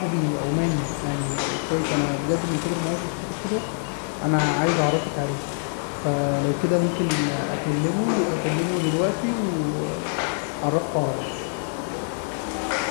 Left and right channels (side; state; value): right; silent; 62 dB below the other